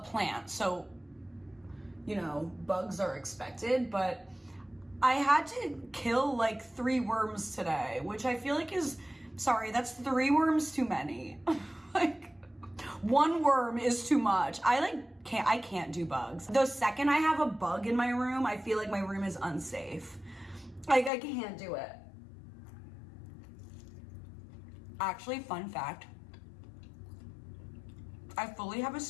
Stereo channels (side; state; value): right; drops out; at 21.1 s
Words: so, you know, bugs are expected, but I had to kill like 3 worms today, which I feel like is, sorry, that's 3 worms too many. Like, 1 worm is too much. I can't do bugs. The second I have a bug in my room, I feel like my room is unsafe. Like, I can't do it. Actually, fun fact, I fully have a